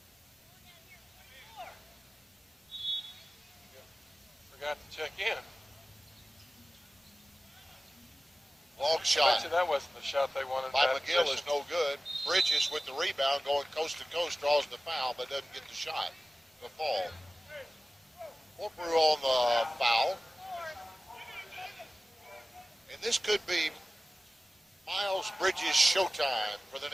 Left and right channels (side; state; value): both; normal; correlation 0.96